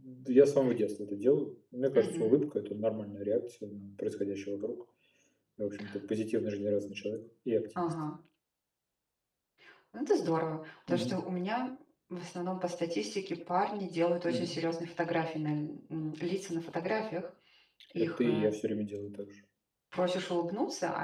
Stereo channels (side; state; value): both; identical; correlation 1.00